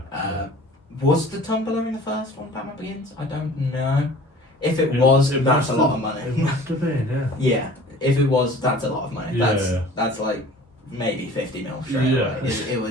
Was the tumbler in the first one, Batman Begins? I don't know. If it It- was, it that's must a have- lot of money. It must have been, yeah. Yeah, if it was, that's a lot of money. Yeah. That's like maybe 50 mil straight Yeah. away. It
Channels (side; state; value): both; normal; correlation 0.46